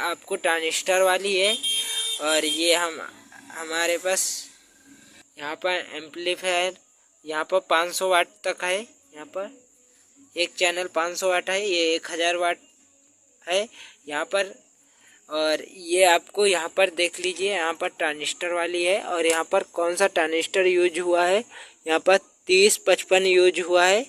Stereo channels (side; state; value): both; identical; correlation 1.00